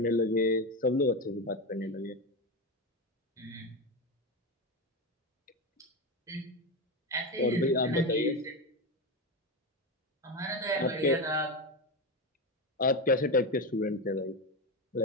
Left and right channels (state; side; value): normal; both; correlation 0.16